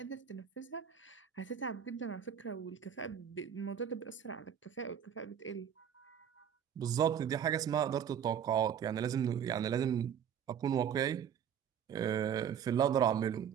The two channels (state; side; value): quieter; left; 8.6 dB